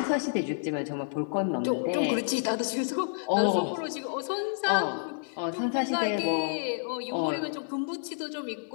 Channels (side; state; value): right; silent; digital silence